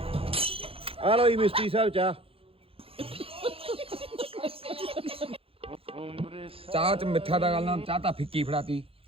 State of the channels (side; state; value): left; late; 0.27 ms